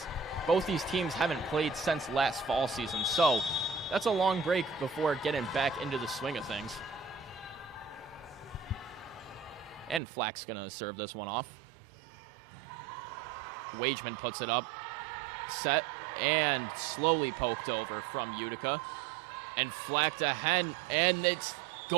both these teams haven't played since last fall season. So that's a long break before getting back into the swing of things. And Flack's going to serve this one off. Wageman puts it up. Set and slowly poked over from Utica. And Flack to Hen. And it's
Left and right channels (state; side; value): drops out; left; at 10.0 s